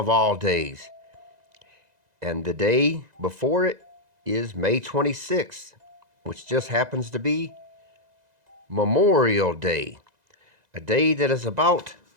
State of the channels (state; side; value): late; left; 2.0 ms